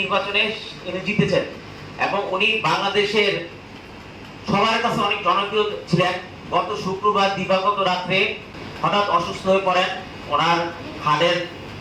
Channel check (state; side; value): identical; both; correlation 1.00